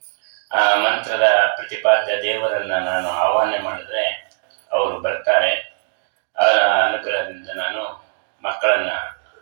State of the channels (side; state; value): left; silent; digital silence